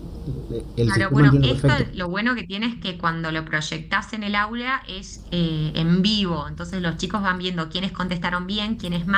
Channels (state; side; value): identical; both; correlation 1.00